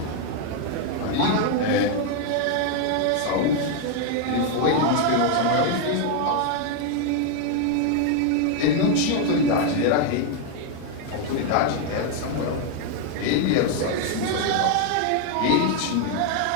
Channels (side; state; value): both; different; correlation 0.00